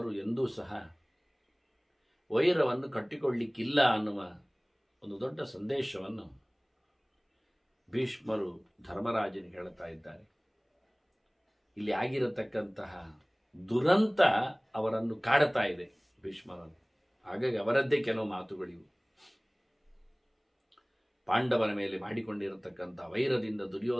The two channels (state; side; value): identical; both; correlation 1.00